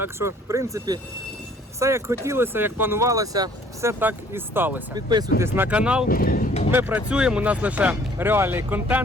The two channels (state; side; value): normal; both; correlation 0.56